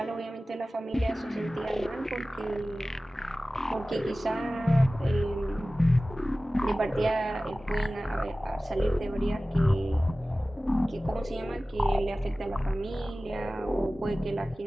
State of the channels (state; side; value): normal; both; correlation 0.97